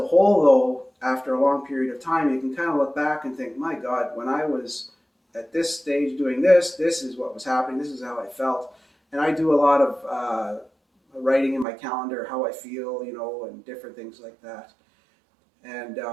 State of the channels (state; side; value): drops out; left; at 11.7 s